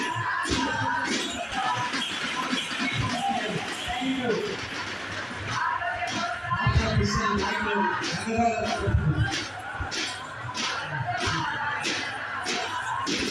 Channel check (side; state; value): both; identical; correlation 1.00